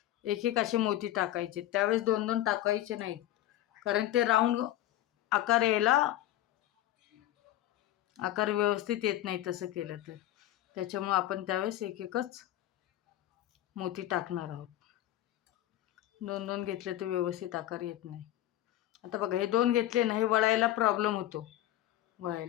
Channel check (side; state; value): right; quieter; 13.8 dB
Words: एक एक असे मोती टाकायचे. त्यावेळेस दोन दोन टाकायचे नाहीत, कारण ते राऊंड आकार यायला आकार व्यवस्थित येत नाही तसं केलं तर. त्याच्यामुळे आपण त्यावेळेस एक एकच मोती टाकणार आहोत. दोन दोन घेतले तर व्यवस्थित आकार येत नाही. आता बघा हे दोन घेतले ना, हे वळायला प्रॉब्लेम होतो